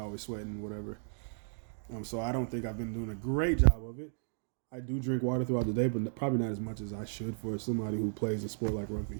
sweating and whatever. So I don't think I've been doing a great job of it. I do drink water throughout the day, but probably not as much as I should for somebody who plays a sport like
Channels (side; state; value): left; silent; digital silence